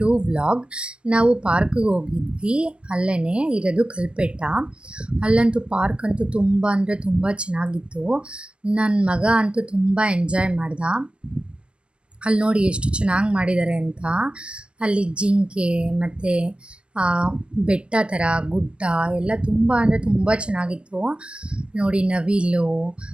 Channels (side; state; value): left; late; 0.058 ms